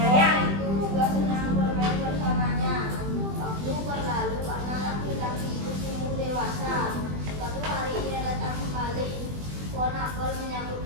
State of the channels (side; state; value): left; late; 20 ms